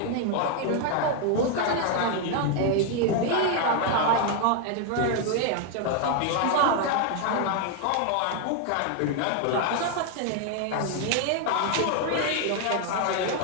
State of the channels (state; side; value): different; both; correlation 0.01